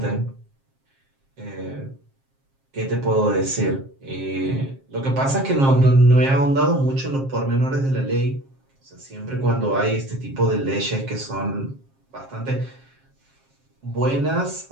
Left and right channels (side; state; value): left; late; 7.5 ms